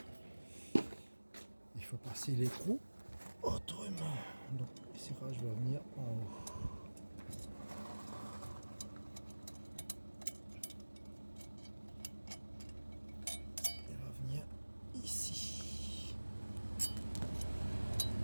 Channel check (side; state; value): both; inverted; correlation -1.00